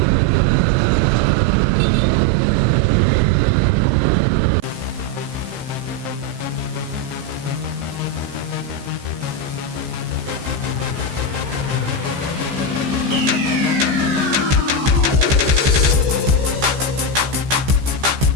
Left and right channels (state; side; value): late; left; 15 ms